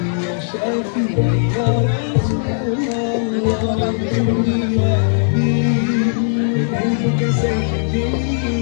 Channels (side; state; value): right; silent; 66 dB below the other